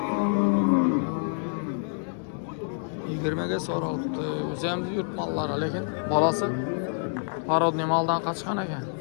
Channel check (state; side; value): silent; right; digital silence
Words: Yigirmege soraldı. O'zimiz yurt mallari, lekin bolasi parodniy maldan qochgan ekan.